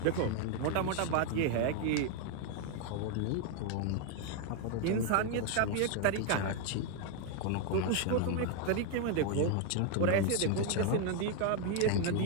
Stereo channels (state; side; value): different; both; correlation 0.01